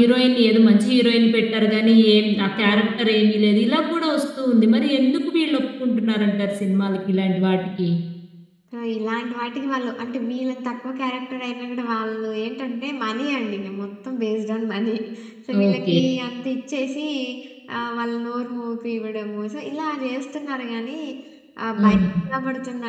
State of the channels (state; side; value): identical; both; correlation 1.00